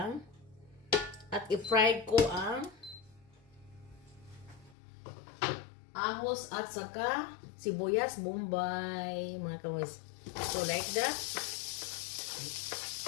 At i-fried ko ang ahos at saka sibuyas bombay mga kamoys. So like that.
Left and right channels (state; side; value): drops out; right; at 4.8 s